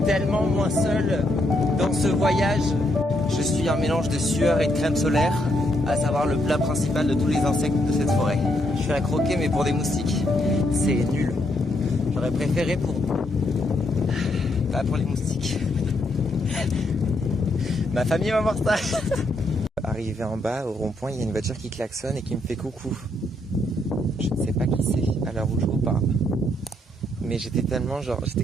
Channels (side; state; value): both; normal; correlation 0.76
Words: tellement moins seul dans ce voyage. Je suis un mélange de sueur et de crème solaire, à savoir le plat principal de tous les insectes de cette forêt. Je suis à croquer mais pour des moustiques, c'est nul. J'aurais préféré pas pour les moustiques. Ma famille va voir ça. Arrivé en bas au rond-point, il y a une voiture qui klaxonne et qui me fait coucou. Je ne sais pas qui c'est à l'heure où je vous parle. Mais j'étais tellement j'étais